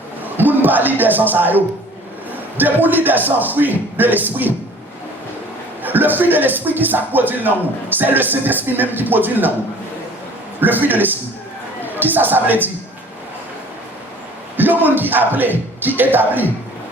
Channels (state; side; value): normal; both; correlation 0.49